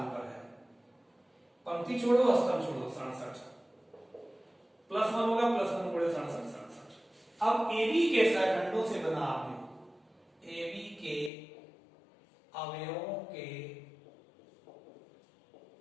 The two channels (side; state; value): right; drops out; at 11.3 s